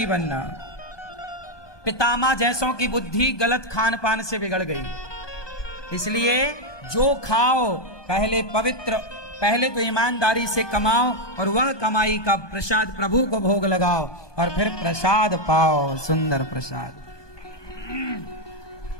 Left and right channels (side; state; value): right; late; 1.2 ms